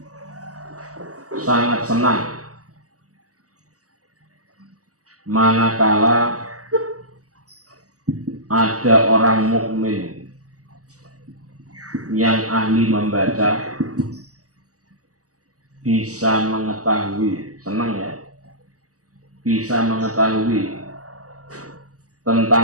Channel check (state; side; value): late; left; 0.66 ms